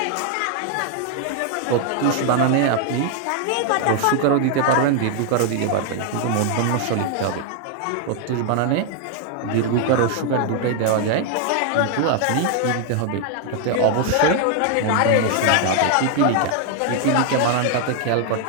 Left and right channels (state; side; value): different; both; correlation 0.00